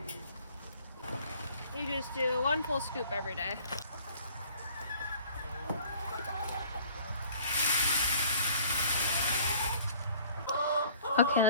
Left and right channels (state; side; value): inverted; both; correlation -0.53